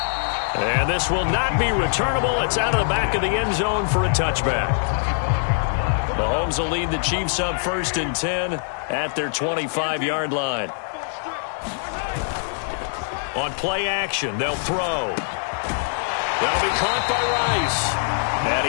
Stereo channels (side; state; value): right; silent; digital silence